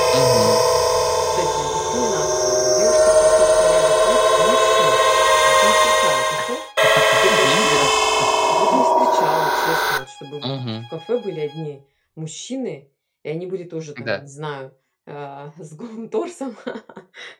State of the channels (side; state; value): both; identical; correlation 1.00